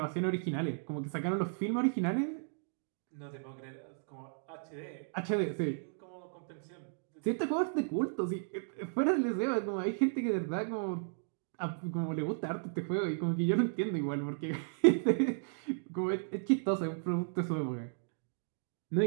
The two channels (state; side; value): silent; left; digital silence